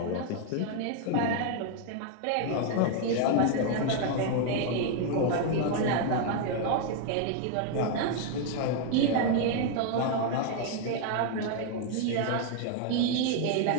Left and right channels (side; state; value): both; different; correlation 0.00